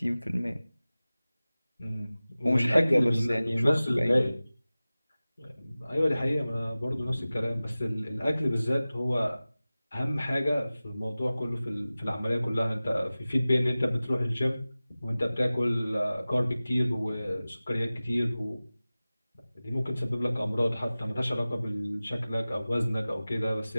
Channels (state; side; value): inverted; both; correlation -0.97